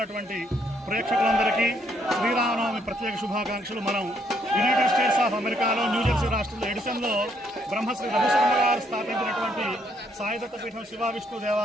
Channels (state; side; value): normal; both; correlation 0.71